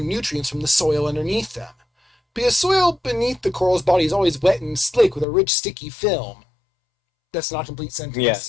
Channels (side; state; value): right; drops out; at 5.2 s